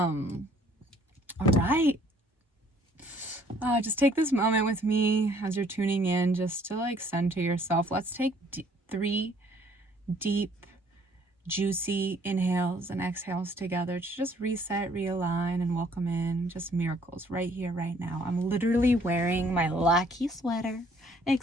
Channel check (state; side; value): normal; both; correlation 0.61